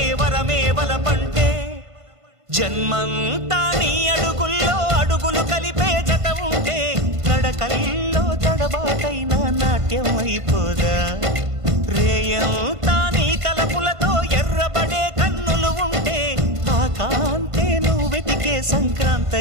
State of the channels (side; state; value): left; late; 1.5 ms